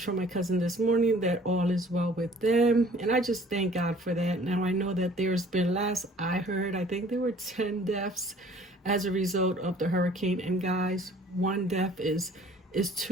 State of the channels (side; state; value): both; normal; correlation 0.53